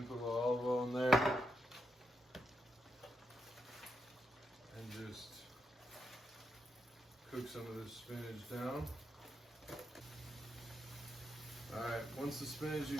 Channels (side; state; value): both; normal; correlation 0.82